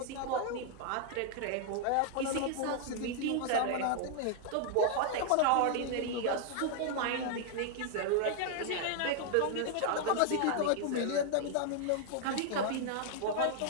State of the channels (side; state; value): both; different; correlation 0.00